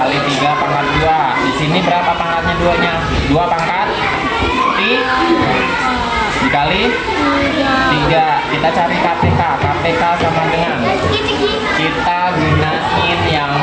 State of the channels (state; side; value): identical; both; correlation 1.00